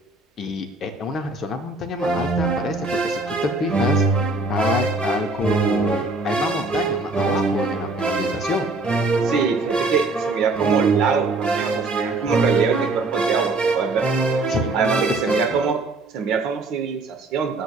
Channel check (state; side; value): quieter; left; 3.1 dB